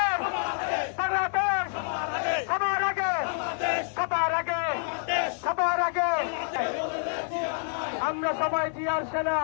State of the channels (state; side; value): silent; right; 60 dB below the other